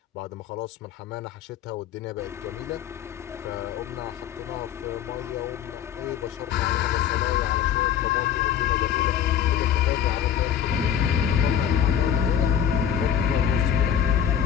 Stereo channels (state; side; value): quieter; right; 9.3 dB